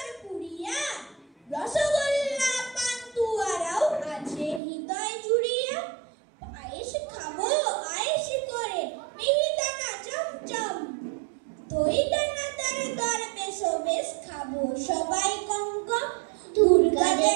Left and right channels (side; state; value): left; drops out; at 4.6 s